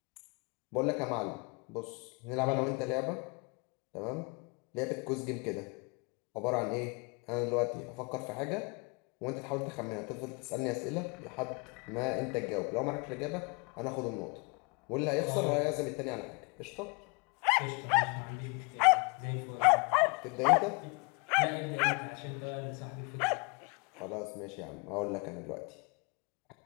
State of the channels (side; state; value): right; quieter; 32.0 dB